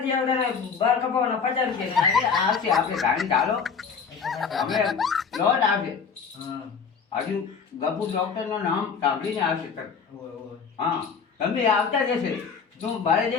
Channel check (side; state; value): right; quieter; 5.9 dB